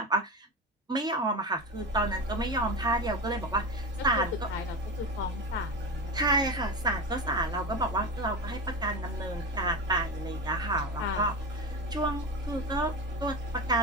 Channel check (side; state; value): both; normal; correlation 0.23